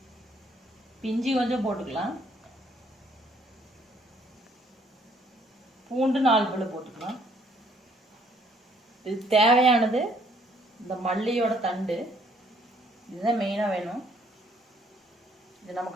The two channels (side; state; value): both; normal; correlation 0.64